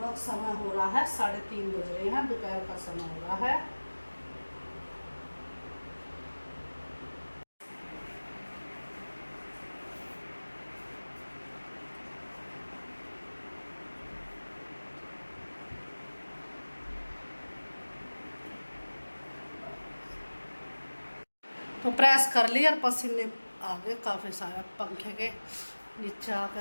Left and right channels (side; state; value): both; inverted; correlation -1.00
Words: समय हो रहा है 3:30 बज रहे हैं, दोपहर का समय हो रहा है। तो प्रेस कर लिया और पसीने आ गए काफ़ी सारे, पंखे के नीचे आकर